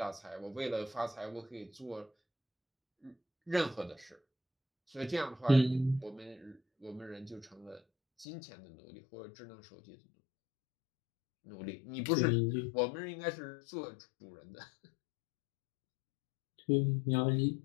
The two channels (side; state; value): right; drops out; at 8.2 s